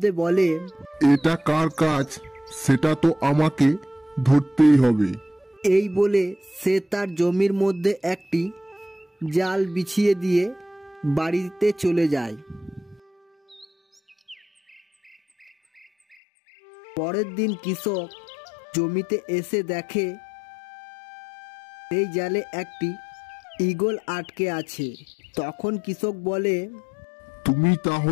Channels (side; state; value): right; drops out; at 16.2 s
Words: বলে, এটা কার কাজ সেটা তো আমাকে ধরতেই হবে। এই বলে সে তার জমির মধ্যে একটি জাল বিছিয়ে দিয়ে বাড়িতে চলে যায়। পরের দিন কৃষক জমিতে এসে দেখে এই জালে একটি ঈগল আটকে আছে। তখন কৃষক বলে, তুমি